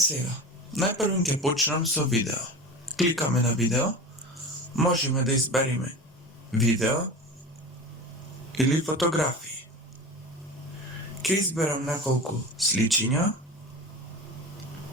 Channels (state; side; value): normal; both; correlation 0.31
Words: најпрво ќе почнам со видео. Кликаме на видео, можеме да избериме видео или фотографии. Ќе изберам неколку сличиња.